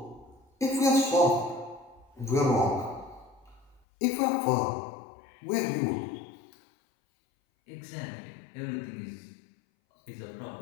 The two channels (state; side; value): drops out; right; at 3.8 s